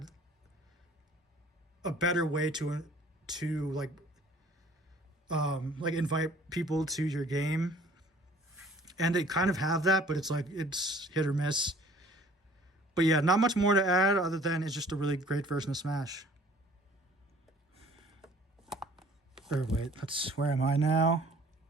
a better way to invite people to your game, and they kind of have that, but it's hit or miss. But yeah, not much more to add other than it's just a really great version of Smash. Or wait, where am I now?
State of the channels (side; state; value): both; normal; correlation 0.53